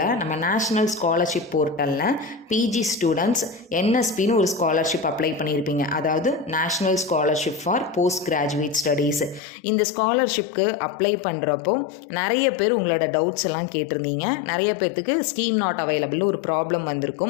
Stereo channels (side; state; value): right; drops out; at 9.4 s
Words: நம்ம நேஷ்னல் ஸ்காலர்ஷிப் போர்ட்டலில் பிஜி ஸ்டூடெண்ட்ஸ் என்எஸ்பின்னு ஒரு ஸ்காலர்ஷிப் அப்ளை பண்ணியிருப்பீங்க. அதாவது national scholarship for post graduate studies. இந்த ஸ்காலர்ஷிப்க்கு அப்ளை பண்ணுறப்போ நிறைய பேர் உங்களோட டவுட்ஸ் எல்லாம் கேட்டிருந்தீங்க. நிறைய பேர்த்துக்கு ஸ்கீம் நாட் அவைலபிள் ஒரு ப்ராப்ளம்